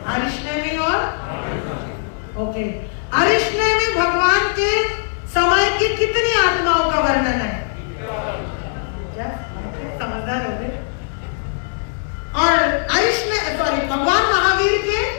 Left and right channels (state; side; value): silent; right; 59 dB below the other